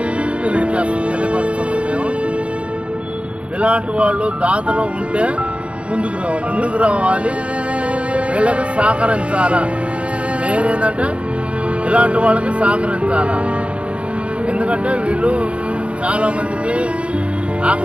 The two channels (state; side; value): late; left; 0.060 ms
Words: తెలియపరుస్తున్నాం. మేము ఇలాంటి వాళ్ళు దాతలో ఉంటే ముందుకు రావాలి, వీళ్ళకి సహకరించాలా. నేనేంటంటే ఇలాంటి వాళ్ళకి సహకరించాలా. ఎందుకంటే వీళ్ళు చాలామందికి